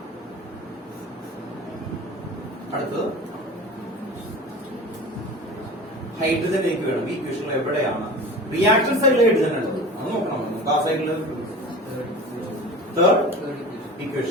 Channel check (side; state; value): both; normal; correlation 0.36